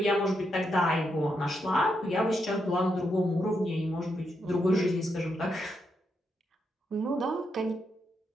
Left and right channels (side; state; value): both; normal; correlation 0.81